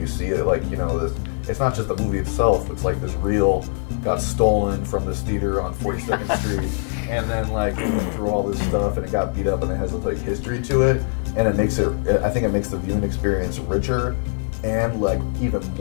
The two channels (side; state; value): right; silent; digital silence